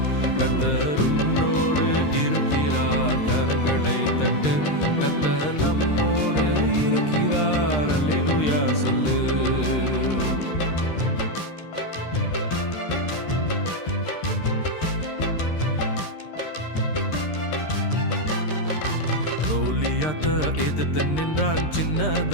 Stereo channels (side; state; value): right; late; 13 ms